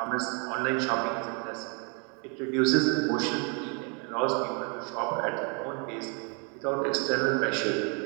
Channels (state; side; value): quieter; left; 35.9 dB